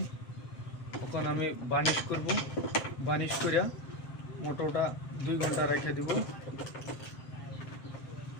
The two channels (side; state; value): right; late; 7.6 ms